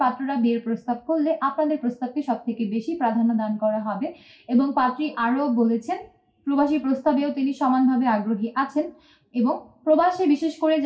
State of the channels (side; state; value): both; identical; correlation 1.00